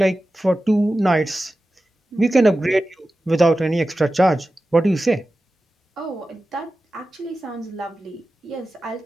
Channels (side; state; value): both; normal; correlation 0.94